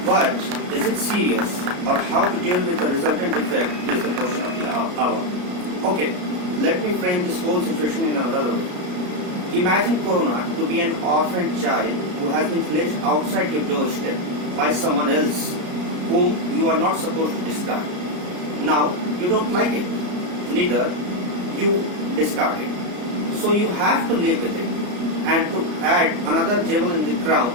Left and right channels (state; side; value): late; left; 33 ms